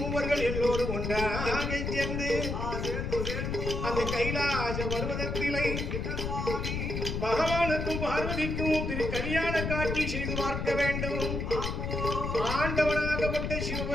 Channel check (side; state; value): left; noise; rumble, 2 dB below the sound